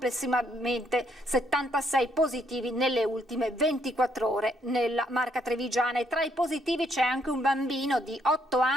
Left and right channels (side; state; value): both; normal; correlation 0.72